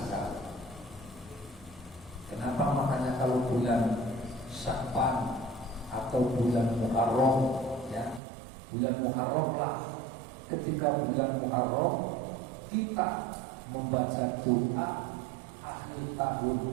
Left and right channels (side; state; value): left; drops out; at 8.2 s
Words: Kenapa? Makanya kalau bulan Sya'ban atau bulan Muharram, ya, bulan Muharram lah. Ketika bulan Muharram kita membaca doa akhir